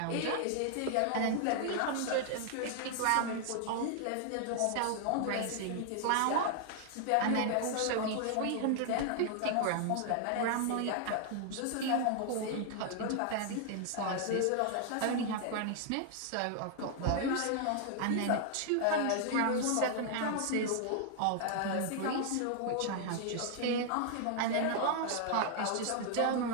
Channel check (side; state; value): both; different; correlation 0.00